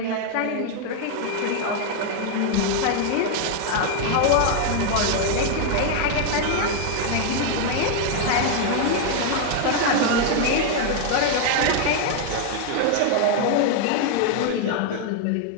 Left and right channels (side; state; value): both; different; correlation 0.00